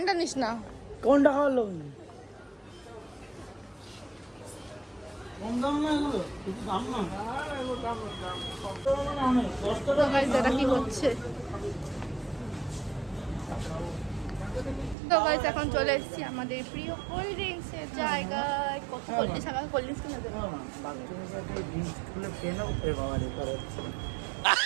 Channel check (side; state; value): left; drops out; at 15.0 s